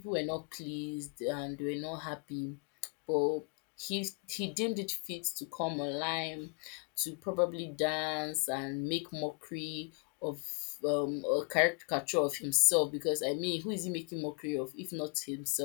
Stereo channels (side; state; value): right; quieter; 35.3 dB